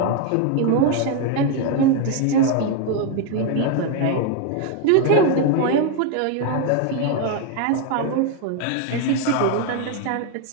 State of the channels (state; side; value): different; both; correlation 0.01